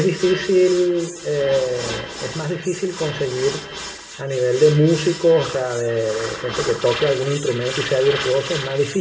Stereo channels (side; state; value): both; identical; correlation 1.00